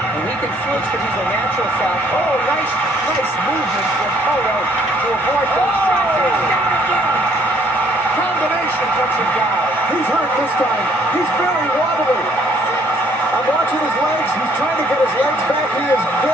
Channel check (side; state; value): both; normal; correlation 0.63